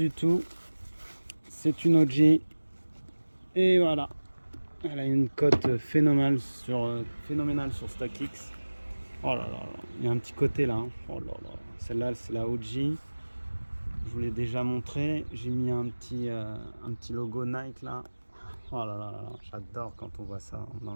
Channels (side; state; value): both; inverted; correlation -1.00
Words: tout. C'est une OG. Et voilà. Elle a une cote phénoménale sur StockX. Oh là là là. Il y a un petit côté là. Hein. Oh là là. Celle-là, c'est la OG. Je vous l'ai déjà montré. J'ai mis un petit logo Nike là. Oh là là là là. J'adore quand on voit ça dans